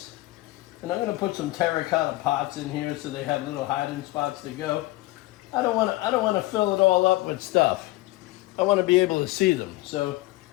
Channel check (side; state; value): right; quieter; 19.2 dB